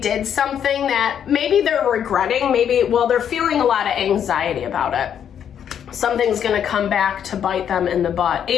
something that maybe they're regretting. They're feeling a lot of anxiety about it. Something's going to come back to bite them in the butt.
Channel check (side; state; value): right; quieter; 8.8 dB